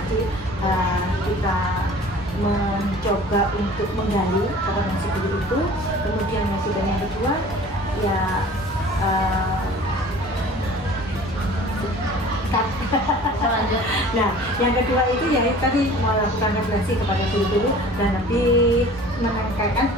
kita mencoba untuk menggali kompetensi guru itu, kemudian yang kedua ya nah yang kedua itu ya tadi melakukan refleksi kepada guru-guru dan lebih menekankan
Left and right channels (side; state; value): both; normal; correlation 0.46